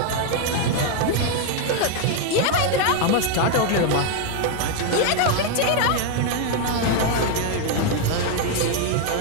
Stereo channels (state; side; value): different; both; correlation 0.01